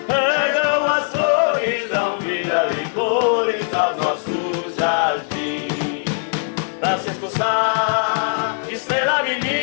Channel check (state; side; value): silent; right; 63 dB below the other